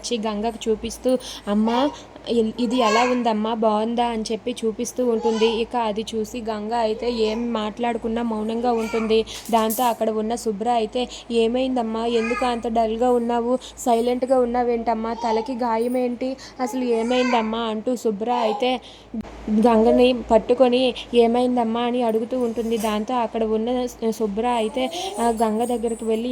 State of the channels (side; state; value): both; identical; correlation 1.00